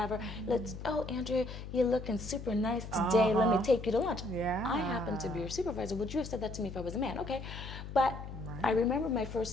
Oh, Andrea, you're looking super nice today. Let me take you to lunch. Yeah. I happen to be your supervisor. Would you have said that to me if I was a man? Okay. But I remember my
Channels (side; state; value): left; noise; hum, 10 dB below the sound